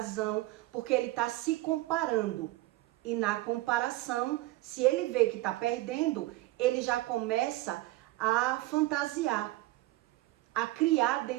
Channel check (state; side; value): quieter; left; 18.3 dB